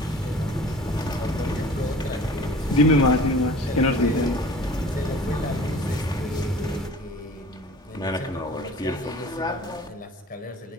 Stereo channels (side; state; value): both; normal; correlation 0.45